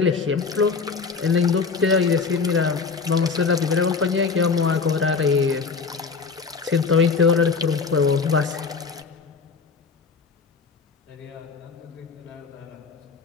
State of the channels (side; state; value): right; quieter; 5.0 dB